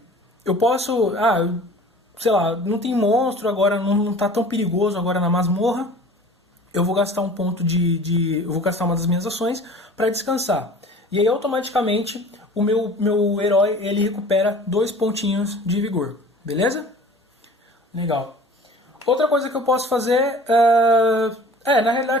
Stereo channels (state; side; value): normal; both; correlation 0.44